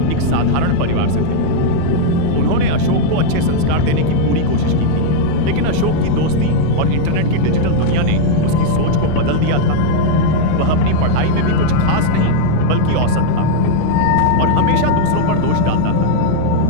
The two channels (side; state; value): both; different; correlation 0.00